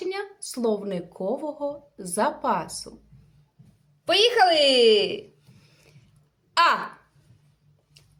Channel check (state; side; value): identical; both; correlation 1.00